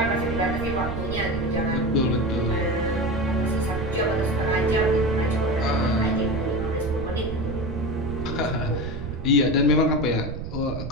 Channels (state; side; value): noise; right; rumble, 7 dB below the sound